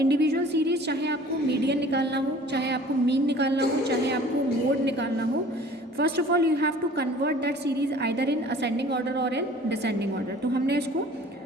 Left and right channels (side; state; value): both; normal; correlation 0.48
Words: सीरीज, चाहे आपको मीडियन निकालना हो, चाहे आपको मीन निकालना हो, चाहे आपको मोड निकालना हो, first of all you have to convert that series either in ascending order और इन डिसेंडिंग ऑर्डर. तो हमने इसको